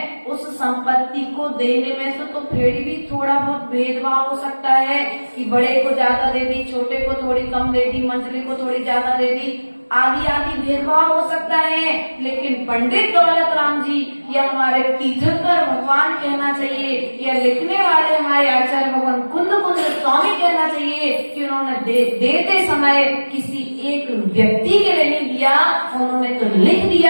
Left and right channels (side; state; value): both; inverted; correlation -1.00